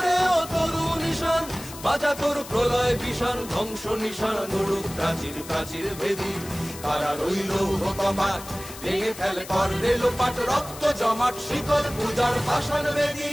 ও তরু নিশান বাজা তোর প্রলয় বিষান, ধ্বংস নিশান উড়ুক প্রাচীর প্রাচীর ভেদী। কারার ওই লৌহ কপাট ভেঙে ফেল কর রে লোপাট, রক্ত জমাট শিকল পূজার পাষাণ বেদী।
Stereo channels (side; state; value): left; noise; hiss, 14 dB below the sound